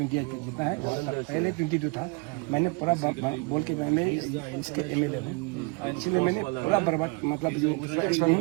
का जितना है, पहले 22 था. मैंने पूरा बोल के मैंने इसके एमएलए हूँ, इसलिए मैंने पूरा बर्बाद मतलब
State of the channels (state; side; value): quieter; left; 29.8 dB